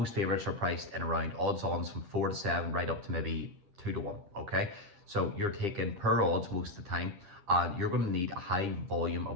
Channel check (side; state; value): left; late; 9.9 ms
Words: favourites are priced in around odds-ons from 4 to 7, right up to maybe 2 to 1, okay? So you're taking per odds most of the time, and you're going to need a high volume